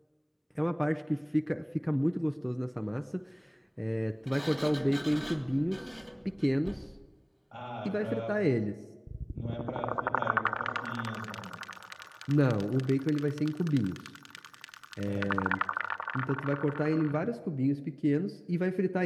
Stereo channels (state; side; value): identical; both; correlation 1.00